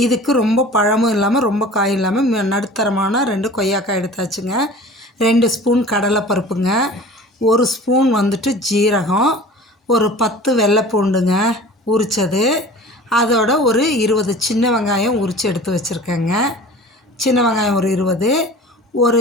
இதுக்கு ரொம்ப பழமும் இல்லாமல் ரொம்ப காயும் இல்லாமல் நடுத்தரமான 2 கொய்யாக்காய் எடுத்தாச்சுங்க. 2 ஸ்பூன் கடலை பருப்புங்க, 1 ஸ்பூன் வந்துட்டு ஜீரகம், ஒரு 10 வெள்ளை பூண்டுங்க உரித்தது, அதோட ஒரு 20 சின்ன வெங்காயம் உரித்து எடுத்து வச்சுருக்கேங்க. சின்ன வெங்காயம் ஒரு 20, ஒரு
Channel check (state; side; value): normal; both; correlation 0.41